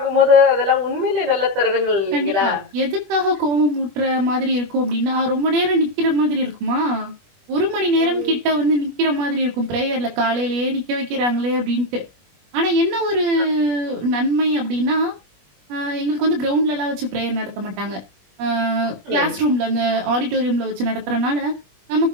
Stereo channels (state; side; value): late; left; 21 ms